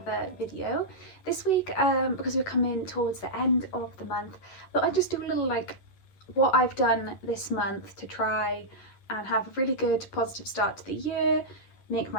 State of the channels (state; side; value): late; right; 11 ms